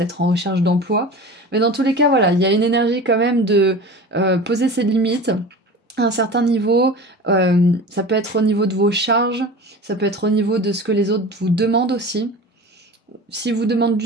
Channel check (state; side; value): normal; both; correlation 0.35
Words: en recherche d'emploi. Mais dans tous les cas, voilà, il y a une énergie quand même de poser ses limites à un certain niveau. Ça peut être au niveau de vos charges, ça peut être au niveau de ce que les autres vous demandent aussi. si vous demande